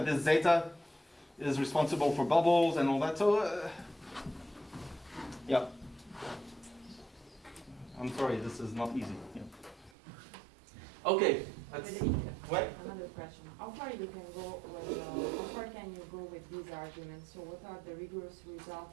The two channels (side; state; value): left; drops out; at 9.9 s